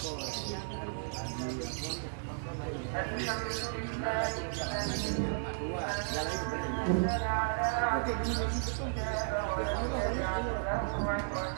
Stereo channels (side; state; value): left; silent; 55 dB below the other